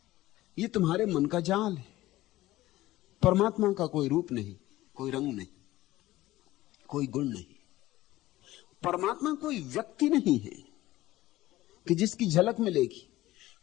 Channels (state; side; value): quieter; right; 16.6 dB